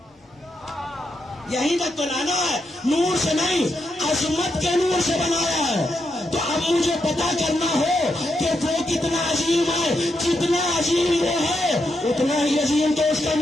یہیں تک تو لانا ہے، نور سے نہیں عظمت کے نور سے بنایا ہے۔ تو اب مجھے پتا کرنا ہو کہ وہ کتنا عظیم ہے، جتنا عظیم وہ ہے اتنا ہی عظیم تو اس کا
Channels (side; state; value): both; normal; correlation 0.83